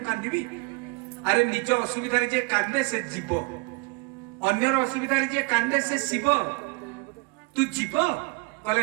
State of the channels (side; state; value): left; quieter; 28.4 dB